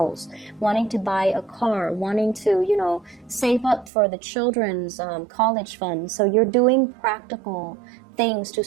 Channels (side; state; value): left; drops out; at 3.9 s